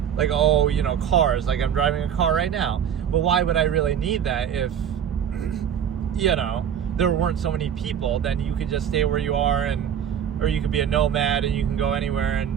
like, oh, cars, like I'm driving a car right now. But why would I really need that if, there weren't so many people? Then you could just stay where you are, or you could be a nomad and you can go anywhere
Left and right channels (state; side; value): quieter; left; 8.7 dB